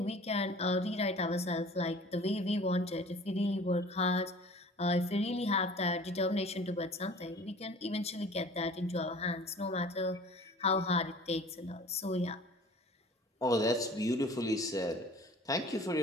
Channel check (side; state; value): both; normal; correlation 0.45